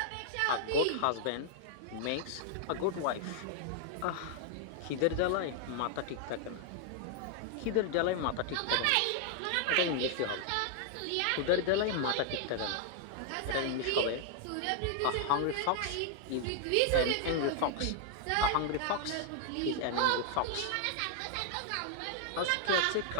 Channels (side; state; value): both; different; correlation 0.00